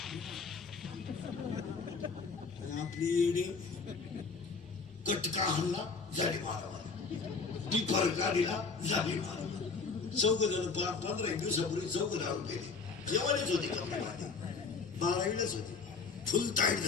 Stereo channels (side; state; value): right; quieter; 4.8 dB